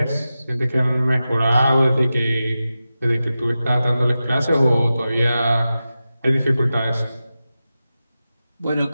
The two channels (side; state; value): both; inverted; correlation -0.93